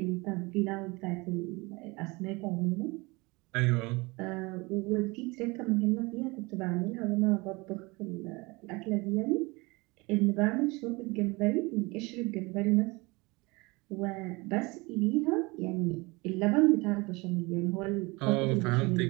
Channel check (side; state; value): left; quieter; 25.0 dB